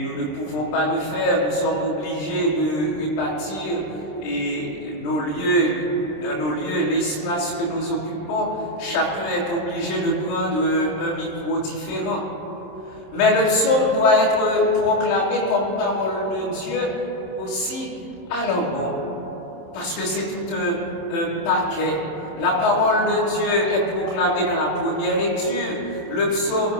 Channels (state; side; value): late; right; 26 ms